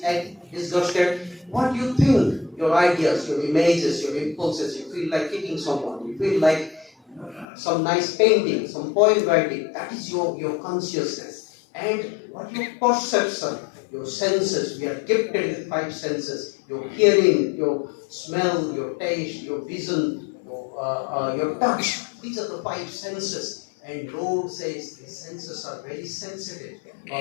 disgusted? What you think, your ideas, your images, your impulses. You feel like kicking someone. You feel like some nice painting, some poem writing. That is your consciousness. And what your perception, your senses. We are gifted with 5 senses. Your hearing, your smell, your taste, your vision, your touch. These are the 5 senses. And Lord says these senses are very sensitive.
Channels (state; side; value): drops out; right; at 7.5 s